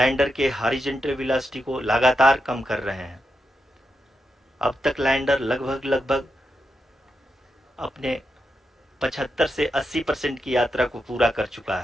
के हॉरिजॉन्टल वेलोसिटी को लगातार कम कर रहे हैं। अब तक लैंडर लगभग अपने 75 से 80% की यात्रा को पूरा कर चुका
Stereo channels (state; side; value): normal; both; correlation 0.86